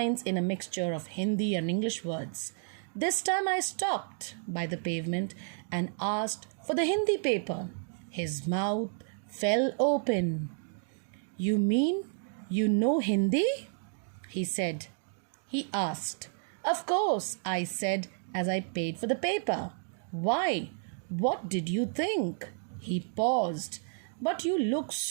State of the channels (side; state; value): left; silent; 57 dB below the other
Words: in a mixture of Hindi and English words. This time I stopped by the pavement and asked for the Hindi paper. His mouth fell open. You mean you know Hindi? He said. He asked. Of course, I said as I paid for the paper. Why? What did you think? He paused. But you look